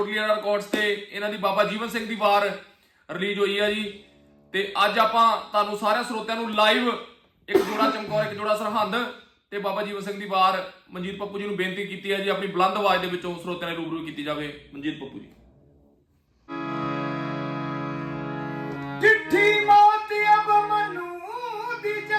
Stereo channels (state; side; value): identical; both; correlation 1.00